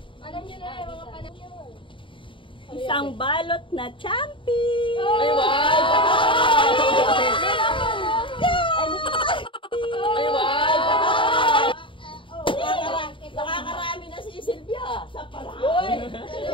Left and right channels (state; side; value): late; right; 0.25 ms